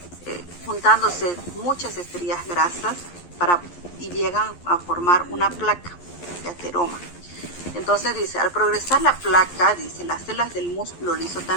juntándose muchas estrías grasas y llegan a formar una placa de ateroma. Entonces dice, al progresar la placa, dice, las células del músculo liso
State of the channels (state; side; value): late; right; 11 ms